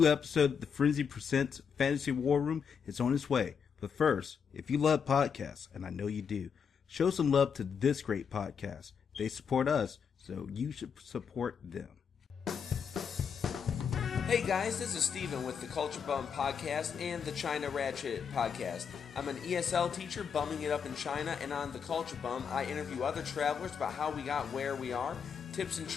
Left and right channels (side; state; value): right; quieter; 6.8 dB